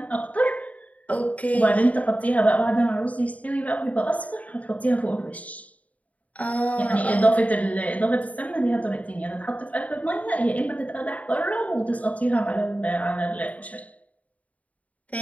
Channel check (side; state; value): right; late; 0.069 ms